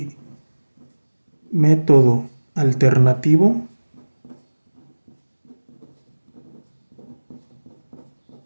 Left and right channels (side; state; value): both; inverted; correlation -1.00